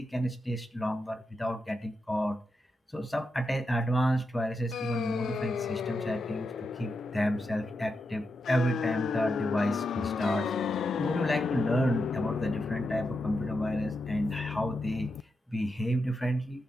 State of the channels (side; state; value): both; normal; correlation 0.86